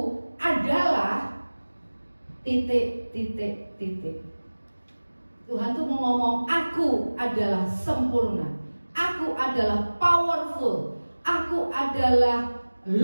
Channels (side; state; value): both; inverted; correlation -1.00